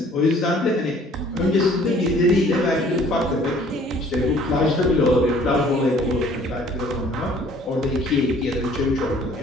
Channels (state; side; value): normal; both; correlation 0.55